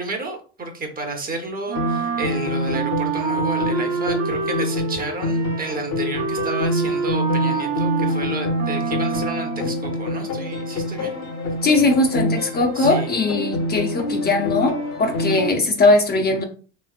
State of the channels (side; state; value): both; normal; correlation 0.07